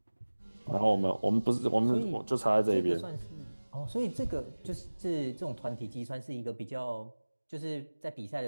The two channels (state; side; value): inverted; both; correlation -1.00